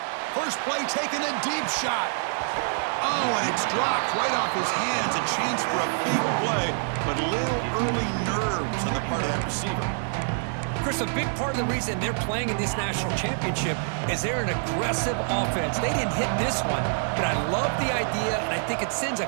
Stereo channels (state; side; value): silent; left; digital silence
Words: First play taken, a deep shot. Oh, and it's dropped right off his hands. A chance for a big play, but a little early nerves on the part of that receiver. Chris, a big part of the reason they're playing in this national championship is they're an aggressive offense. They didn't hit this one, but I love the idea, and I think it sends